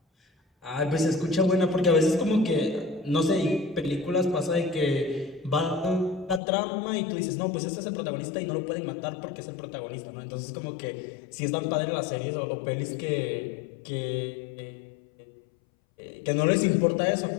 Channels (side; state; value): right; drops out; at 6.4 s